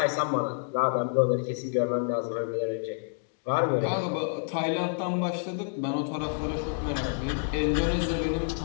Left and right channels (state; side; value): silent; right; digital silence